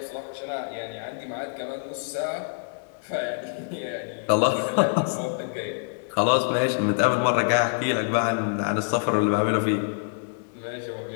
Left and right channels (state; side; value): silent; right; 61 dB below the other